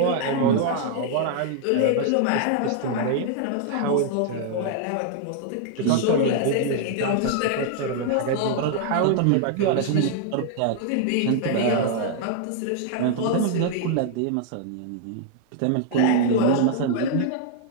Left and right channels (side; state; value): both; different; correlation -0.01